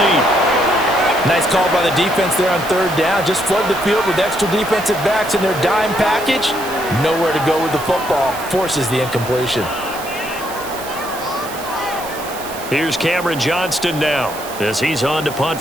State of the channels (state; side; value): noise; right; hiss, 13 dB below the sound